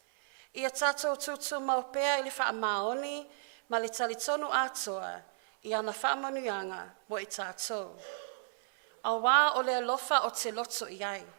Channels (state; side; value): silent; left; 55 dB below the other